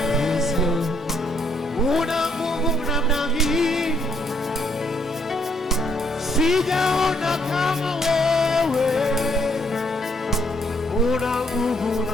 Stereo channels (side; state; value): both; normal; correlation 0.70